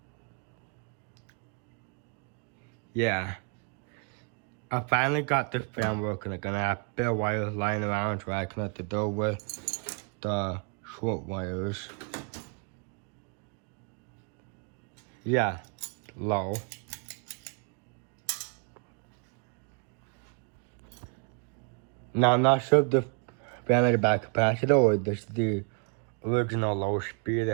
Yeah. I finally got this fan working again. I have bare wires lying around so I connect the door with the short wires. Yeah, low. Now I'm not sure if the fan had a bad capacitor or this is the original low speed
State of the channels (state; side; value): quieter; left; 38.0 dB